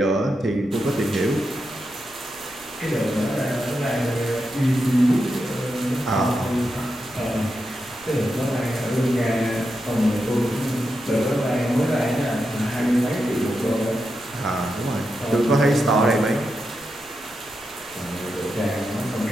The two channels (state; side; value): noise; left; rumble, 27 dB below the sound